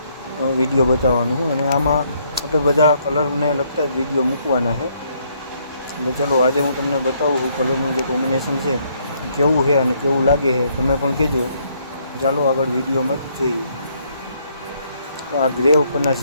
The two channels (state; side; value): inverted; both; correlation -0.70